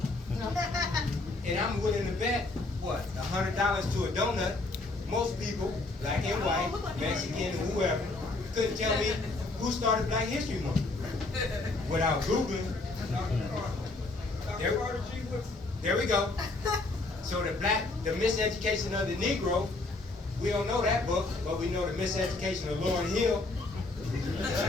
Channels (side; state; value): right; quieter; 3.2 dB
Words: And I'm willing to bet, what, $100 to a donut, most people, black and white, Mexican, whoever, couldn't tell me who started Black History Month without Googling. There we go. So the miseducation of the Negro, we don't know that book, but we know the miseducation of Lauryn Hill.